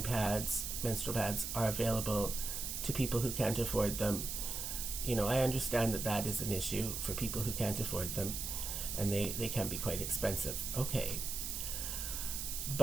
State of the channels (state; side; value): noise; right; hiss, 4 dB below the sound